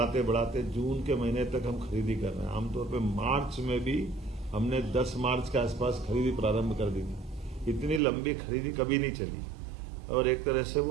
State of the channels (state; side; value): drops out; left; at 8.0 s